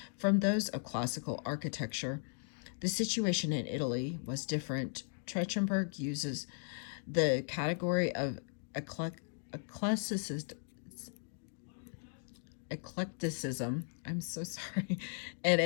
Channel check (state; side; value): silent; right; digital silence